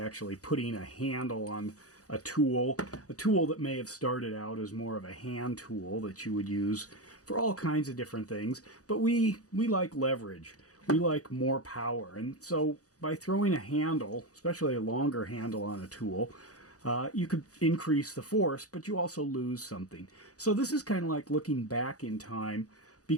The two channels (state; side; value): late; right; 0.67 ms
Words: putting a handle on a tool that may have started out as more of a hand tool that you would use for all kinds of different things, but we like leverage, we like more power, and so by throwing a handle, especially a longer handle on a tool, you could increase the force, but you also lose something. So this is kind of like looking back in time,